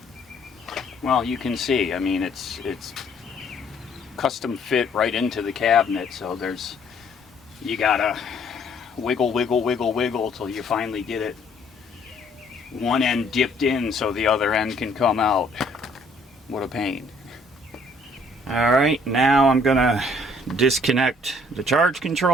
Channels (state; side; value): normal; both; correlation 0.62